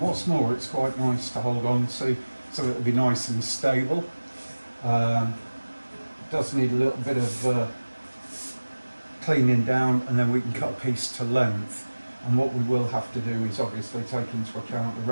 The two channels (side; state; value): both; inverted; correlation -1.00